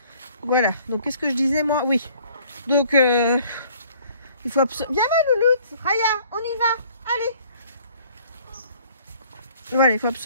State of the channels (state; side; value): inverted; both; correlation -0.57